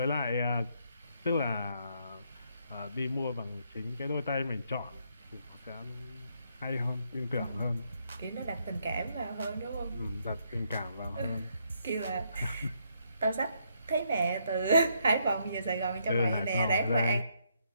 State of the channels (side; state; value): both; inverted; correlation -0.74